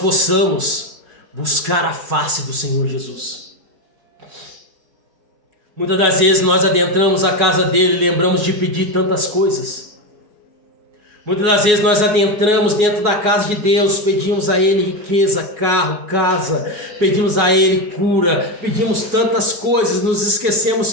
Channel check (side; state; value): left; late; 4.8 ms